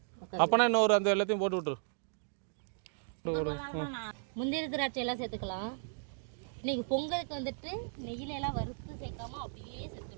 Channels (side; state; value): left; silent; digital silence